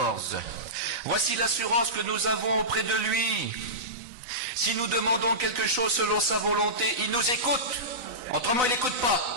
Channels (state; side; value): late; left; 4.0 ms